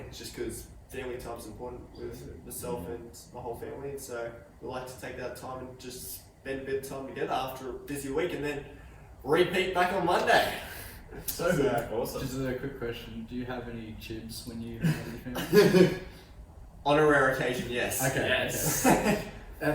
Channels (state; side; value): identical; both; correlation 1.00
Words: just because family time's important with myself and my whole family. And so we like to take that time and just spend a bit of time together after a busy week, and then repeat back on Monday. So good. Awesome. Just a quick question: do you have any chibs when you hang out with your family? On a rare occasion, yes. Okay. Yes. Okay.